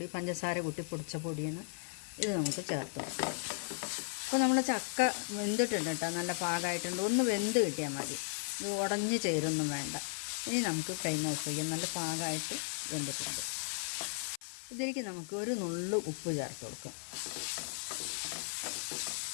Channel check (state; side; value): silent; right; 54 dB below the other